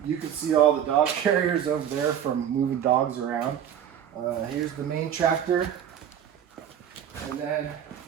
You can see all the dog carriers over there from moving dogs around. Here's the main tractor. And then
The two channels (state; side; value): quieter; left; 9.5 dB